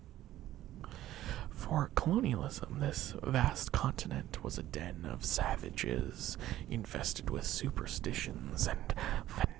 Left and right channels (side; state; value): left; quieter; 13.9 dB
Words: For colonialism, this vast continent was a den of savages, infested with superstitions and